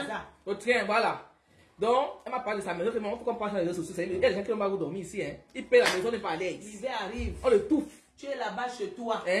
Au train, voilà. Donc, elle m'a parlé de sa maison, il faut qu'on passe dans les réseaux sociaux. Il y a des gens qui n'ont pas dormir ici. Hein. Ils payent la maison, n'est pas à l'aise. L'hiver arrive. On le touffe. Tu es là-bas chez toi.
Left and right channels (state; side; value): identical; both; correlation 1.00